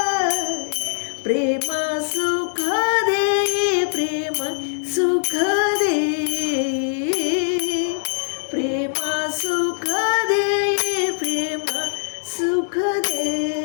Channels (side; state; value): right; silent; digital silence